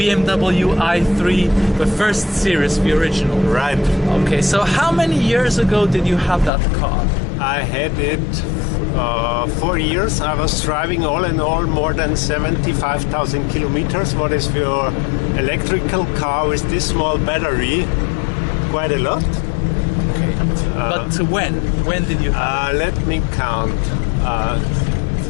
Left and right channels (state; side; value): drops out; right; at 6.5 s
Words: i3, the first series, the original. Right. Okay, so how many years ago did you have that car? I had it 4 years. I was driving all in all more than 75,000 kilometers. What is your electrical car with this small battery? Quite a lot. Okay. But when did you have it? Let me count.